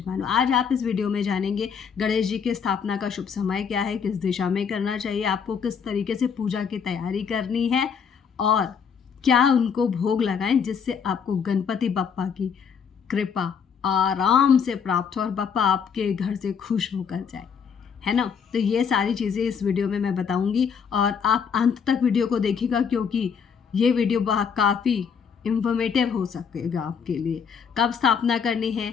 आज आप इस वीडियो में जानेंगे गणेश जी की स्थापना का शुभ समय क्या है, किस दिशा में करना चाहिए, आपको किस तरीके से पूजा की तैयारी करनी है और क्या उनको भोग लगाएं जिससे आपको गणपति बप्पा की कृपा आराम से प्राप्त हो और बप्पा आपके घर से खुश होकर जाए, है ना। तो ये सारी चीज़ें इस वीडियो में मैं बताऊंगी और आप अंत तक वीडियो को देखिएगा, क्योंकि ये वीडियो काफ़ी इंफॉर्मेटिव हो सकेगा आपके लिए। कब स्थापना करनी है,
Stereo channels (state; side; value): quieter; right; 6.7 dB